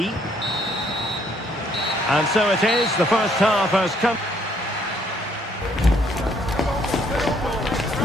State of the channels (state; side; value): normal; both; correlation 0.66